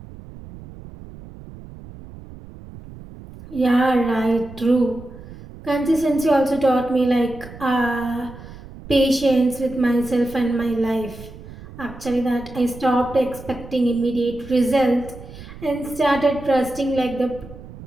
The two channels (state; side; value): noise; right; rumble, 16 dB below the sound